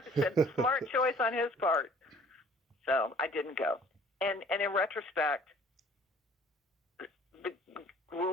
said, smart choice on his part. So I didn't go. And in retrospect, the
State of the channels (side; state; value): both; normal; correlation 0.53